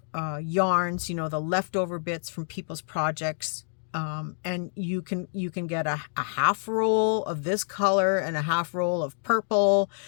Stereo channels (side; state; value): right; silent; digital silence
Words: yarns, you know, the leftover bits from people's projects. And you can get a half roll of this color and a half roll of purple